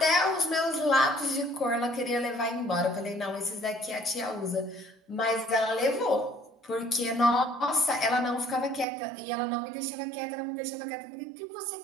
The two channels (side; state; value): left; drops out; at 8.8 s